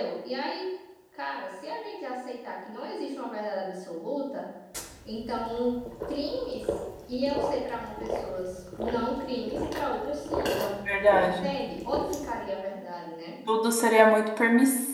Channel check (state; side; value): identical; both; correlation 1.00